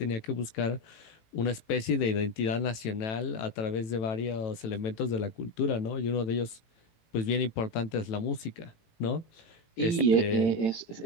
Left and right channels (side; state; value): right; late; 18 ms